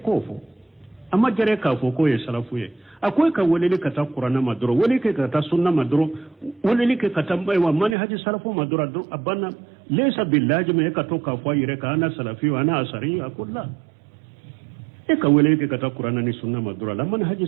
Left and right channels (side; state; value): left; drops out; at 8.0 s